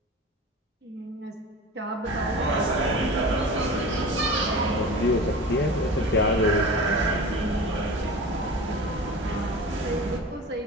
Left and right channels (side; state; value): both; normal; correlation 0.34